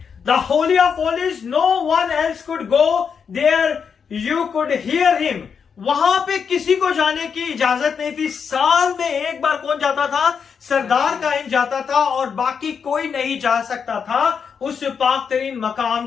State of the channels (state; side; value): quieter; right; 6.5 dB